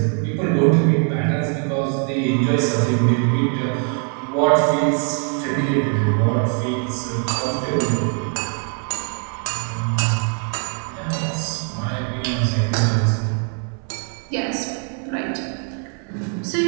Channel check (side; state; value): left; quieter; 39.6 dB